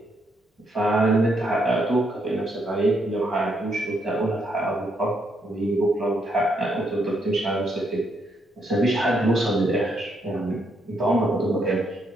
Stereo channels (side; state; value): both; normal; correlation 0.76